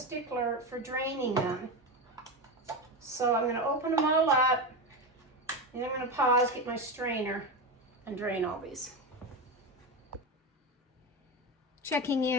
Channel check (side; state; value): both; normal; correlation 0.18